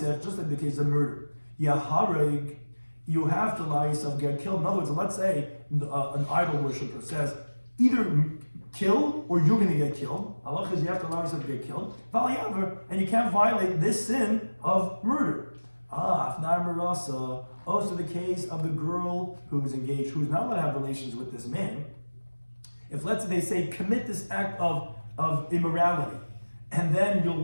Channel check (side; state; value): both; inverted; correlation -1.00